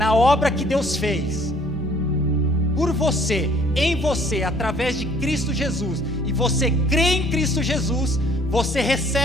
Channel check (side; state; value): right; noise; rumble, 20 dB below the sound